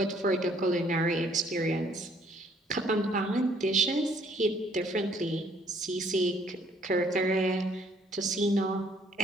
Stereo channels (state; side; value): normal; both; correlation 0.63